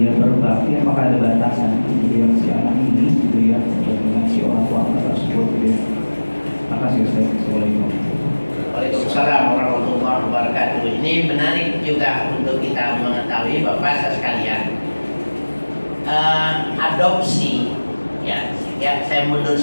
berbakti apakah ada batasan gitu ya, si anak ini gitu ya dengan si orang tua tersebut gitu ya. Makasih Ustaz. Assalamualaikum. Waalaikumsalam warahmatullahi wabarakatuh. Ini menarik juga untuk kita mengetahui Bapak sekalian. Adopsi, ya saya mundur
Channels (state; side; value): inverted; both; correlation -1.00